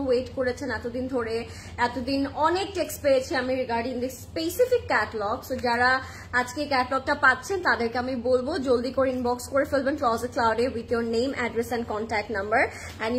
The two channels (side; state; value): both; identical; correlation 1.00